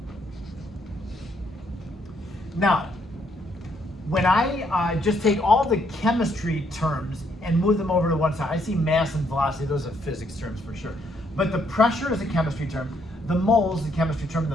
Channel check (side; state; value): both; normal; correlation 0.71